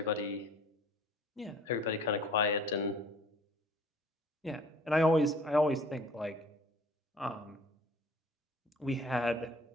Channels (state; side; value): normal; both; correlation 0.52